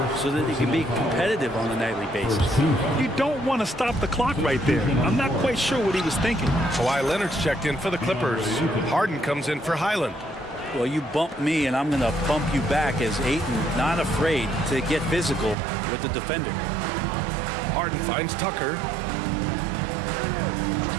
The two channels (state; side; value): drops out; left; at 15.6 s